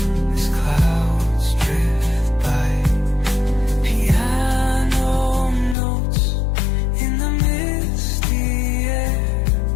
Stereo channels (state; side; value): drops out; right; at 5.8 s